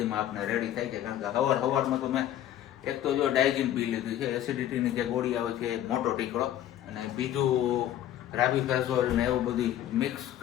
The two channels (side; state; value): right; quieter; 11.9 dB